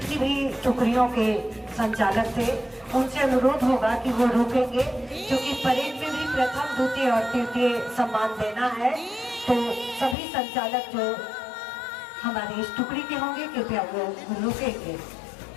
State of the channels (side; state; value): right; drops out; at 10.2 s